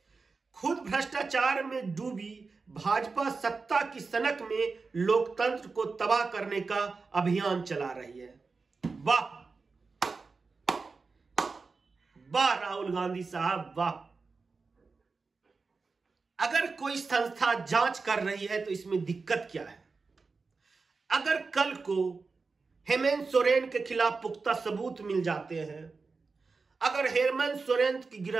खुद भ्रष्टाचार में डूबी भाजपा सत्ता की सनक में लोकतंत्र को तबाह करने का अभियान चला रही है। वाह वाह राहुल गांधी साहब, वाह। अगर कोई संस्था जांच कर रही है तो इसमें दिक्कत क्या है? अगर कल को हेमंत सोरेन के खिलाफ पुख्ता सबूत मिल जाते हैं, अगर हेमंत सोरेन की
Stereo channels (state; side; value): quieter; left; 4.3 dB